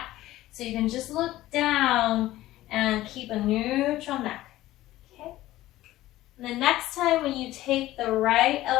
So you can just look down and keep a neutral neck. Okay. And the next time when you take the right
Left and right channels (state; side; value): quieter; right; 15.7 dB